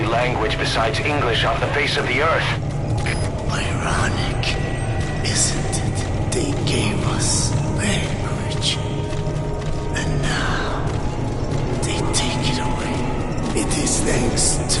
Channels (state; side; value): identical; both; correlation 1.00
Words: language besides English off the face of the earth. Ironic, isn't it? They gave us language, and now they take it away. It is thanks